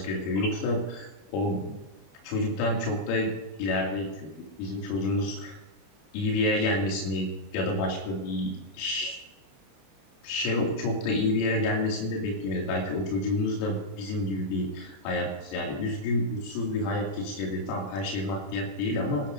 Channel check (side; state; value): right; late; 21 ms